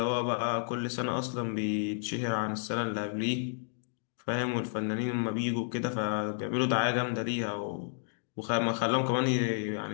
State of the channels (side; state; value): right; silent; digital silence